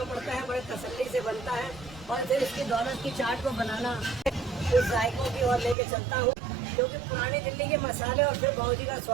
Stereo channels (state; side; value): drops out; left; at 5.8 s